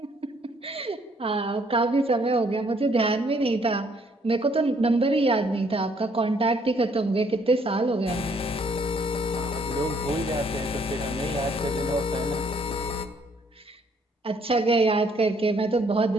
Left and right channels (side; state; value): both; normal; correlation 0.66